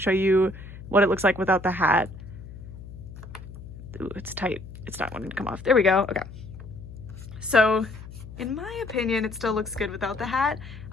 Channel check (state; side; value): noise; left; hum, 14 dB below the sound